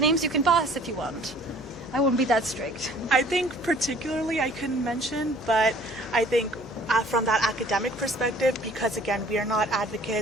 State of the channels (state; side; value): noise; left; hum, 21 dB below the sound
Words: you can pass if you want? I won't be that strict. I think particularly I couldn't mention, but I think from that academic perspective, because again, we are not